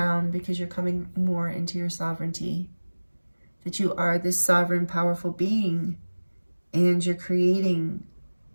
because you're coming more into your sovereignty, that you are this sovereign, powerful being, and you're creating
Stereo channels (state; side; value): inverted; both; correlation -1.00